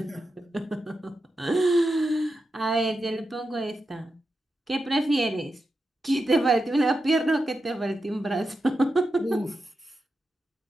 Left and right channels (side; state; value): both; normal; correlation 0.88